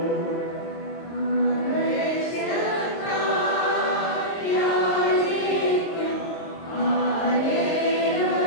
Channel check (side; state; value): right; late; 22 ms